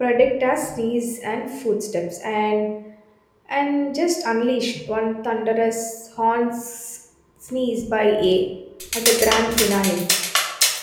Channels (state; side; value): identical; both; correlation 1.00